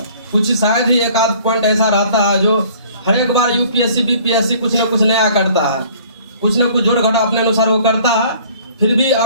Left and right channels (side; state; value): both; inverted; correlation -0.53